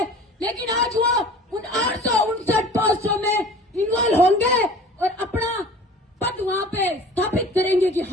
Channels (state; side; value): normal; both; correlation 0.44